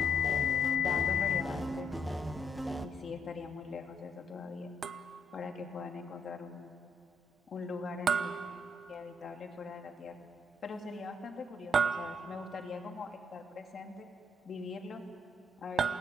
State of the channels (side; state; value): both; normal; correlation 0.71